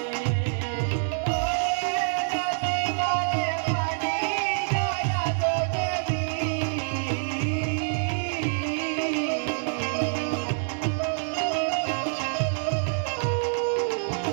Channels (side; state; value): left; silent; digital silence